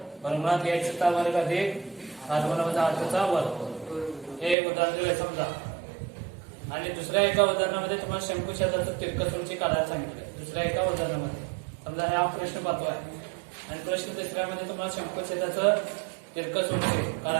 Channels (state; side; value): drops out; left; at 4.5 s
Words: वर्गमुळात h चा वर्ग अधिक r1 वजा r2 चा वर्ग. हे उदाहरण दिलंय समजा. आणि दुसऱ्या एका उदाहरणामध्ये तुम्हाला शंकुछेदाचं तिरकस उंची काढायला सांगितलंय. दुसऱ्या एका उदाहरणामध्ये समजा हा प्रश्न पाहतो आहे आणि प्रश्न तिसऱ्यामध्ये तुम्हाला शंकुछेदाचं तिरकस उंची